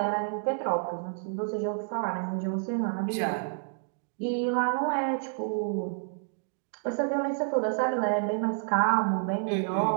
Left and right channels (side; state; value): left; silent; digital silence